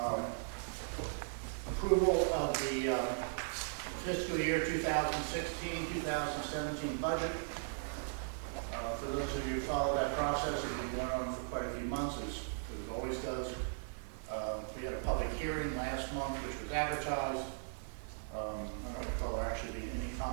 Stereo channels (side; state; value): left; silent; 53 dB below the other